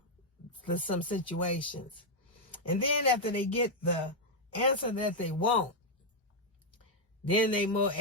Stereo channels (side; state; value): both; normal; correlation -0.01